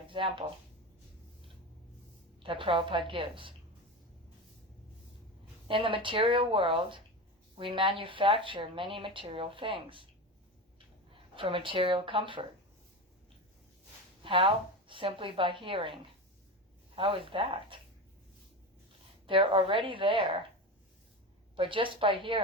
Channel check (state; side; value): normal; both; correlation 0.23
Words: example that Prabhupada gives. In the material world, we manufacture many material things for material comfort. How? Simply by hearing. How is that? They're already there, but just by